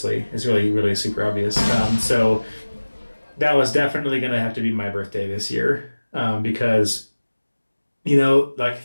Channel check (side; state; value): both; inverted; correlation -1.00